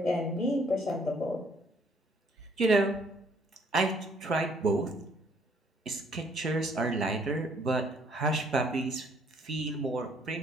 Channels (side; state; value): both; normal; correlation 0.64